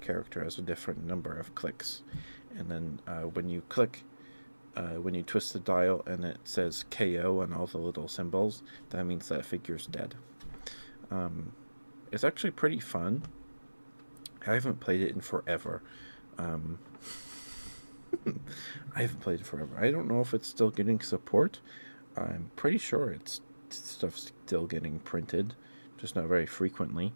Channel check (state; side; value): inverted; both; correlation -1.00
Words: character has a different number of clicks, and then when you twist the dial and it says KO and all the little symbols, that means that figure's dead. It's actually pretty fun. I haven't played it in forever. Um, I haven't played it forever. I don't know if it's still getting support. I'm pretty sure it's stuff's still getting printed, just not very frequently.